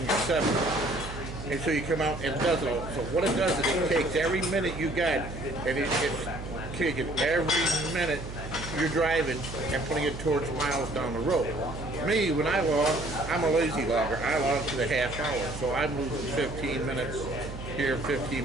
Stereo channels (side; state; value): right; noise; hum, 10 dB below the sound